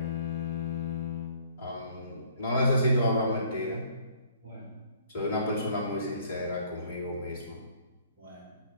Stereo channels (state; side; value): inverted; both; correlation -0.58